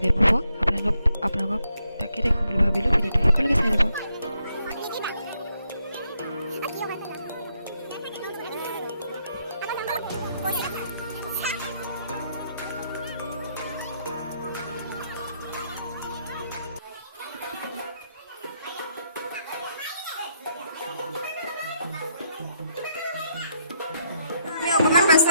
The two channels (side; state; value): both; inverted; correlation -0.76